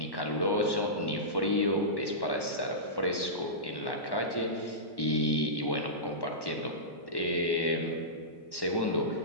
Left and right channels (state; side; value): late; right; 1.1 ms